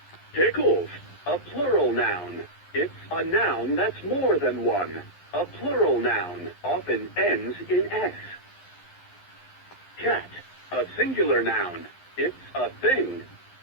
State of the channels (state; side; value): late; right; 11 ms